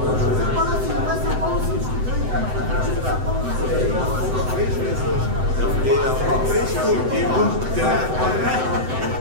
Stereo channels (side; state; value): left; late; 7.9 ms